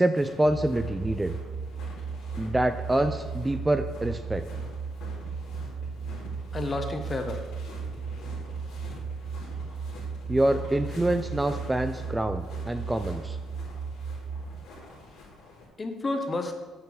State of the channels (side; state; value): both; normal; correlation 0.89